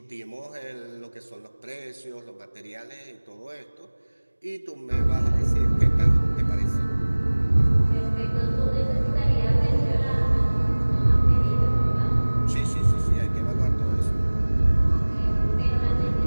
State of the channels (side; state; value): both; inverted; correlation -1.00